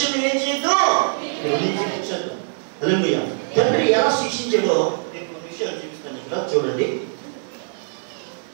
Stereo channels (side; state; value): left; silent; 60 dB below the other